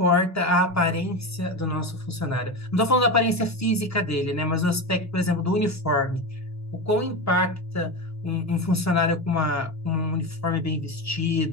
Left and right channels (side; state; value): both; normal; correlation 0.20